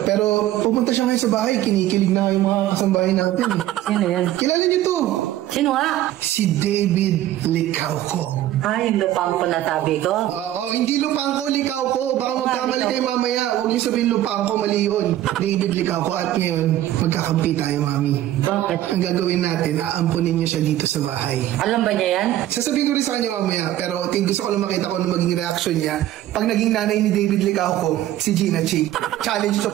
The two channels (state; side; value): quieter; left; 13.4 dB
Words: Pero pumunta siya ngayon sa bahay, kinikilig na yung mga kasambahay natin. Sino yan? Kilala niyo to? Sino nga? Si David Licauco. Ay, yung lupang ko natabi ko. Oo, hindi lupang ko, Licauco. Baka magkamali kayo mamaya. Huwag niyo sabihin lupang ko, mali yun. David Licauco. At ngayon, magkakampi tayo, mami. Bakit? Ang gagawin natin, aampunin niyo siya dito sa bahay. Alam ba niya yan? Sasabihin ko rin sa kanya mamaya, pero gusto ko lang makita kung ano maging reaction niya. Pag naging nanay ni David Licauco, si Gina Chi. Challenge to